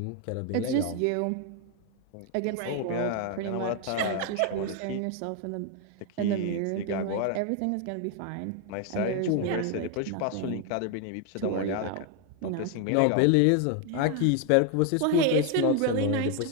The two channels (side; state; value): both; different; correlation 0.01